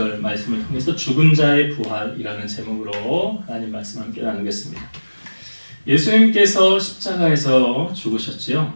말씀을 통해서 죽은 자의 부활이라는 제목으로 하나님 말씀 함께 나누겠습니다. 예수님께서 십자가에서 죽으셨지요.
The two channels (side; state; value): both; inverted; correlation -1.00